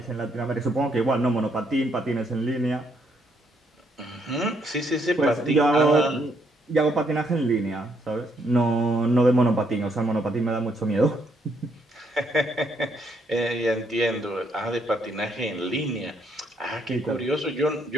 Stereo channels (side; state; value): both; normal; correlation 0.73